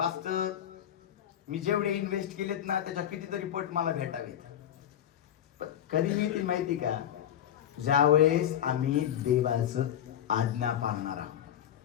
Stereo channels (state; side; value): quieter; right; 10.4 dB